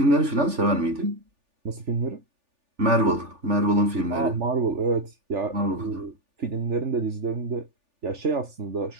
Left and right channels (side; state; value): left; late; 3.4 ms